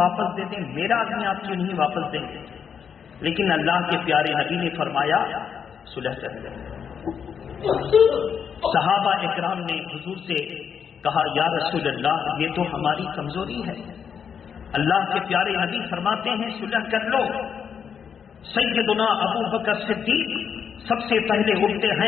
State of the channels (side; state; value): right; quieter; 7.2 dB